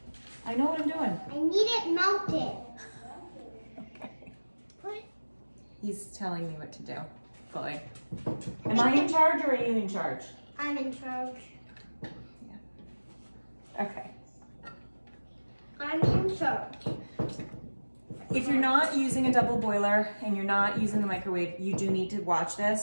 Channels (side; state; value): both; inverted; correlation -1.00